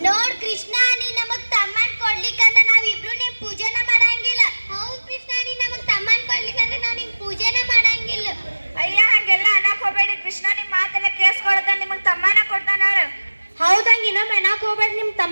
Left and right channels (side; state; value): both; inverted; correlation -1.00